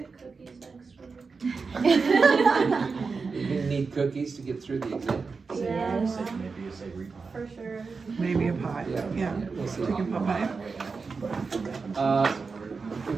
cookies next week? You're gonna need cookies to get through the exam. Yeah, Maybe a savory pie. for sure. Maybe a pie, yeah. We'll see. Chicken pot pie.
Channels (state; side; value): quieter; left; 4.7 dB